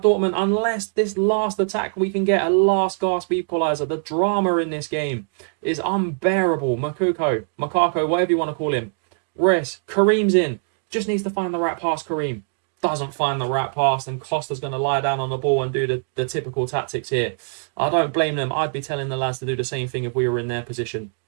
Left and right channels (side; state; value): left; silent; digital silence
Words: Dortmund, unless this last attack we can get a last gasp equaliser. The drama in this game is unbearable. Moukoko, whatever you want to call him. Reus, Kareem's in. Just needs to find the right pass, Kareem. Doesn't find the right pass, and Costa's going to lie down on the ball and do the typical tactics here. I don't blame them. I'd be telling the lads to do the same thing if we were in their position.